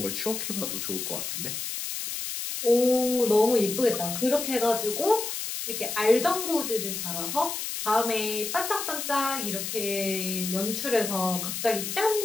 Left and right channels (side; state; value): left; noise; hiss, 4 dB below the sound